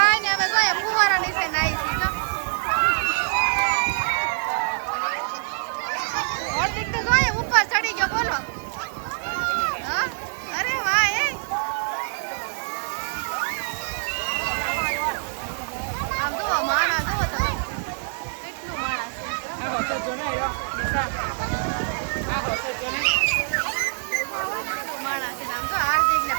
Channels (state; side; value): silent; left; digital silence